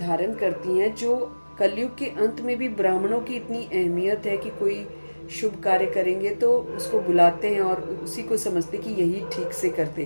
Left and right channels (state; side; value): inverted; both; correlation -1.00